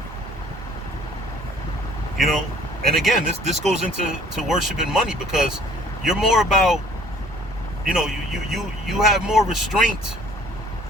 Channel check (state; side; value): normal; both; correlation 0.55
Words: You know? And again, this goes into worship and money, because you're more about, you know, you have more restraint